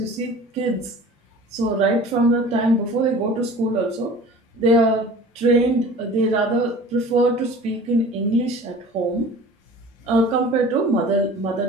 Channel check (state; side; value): normal; both; correlation 0.43